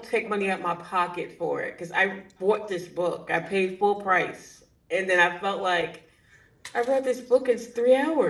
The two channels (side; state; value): both; identical; correlation 1.00